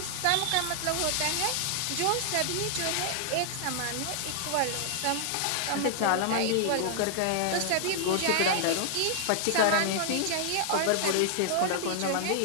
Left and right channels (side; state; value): both; different; correlation -0.01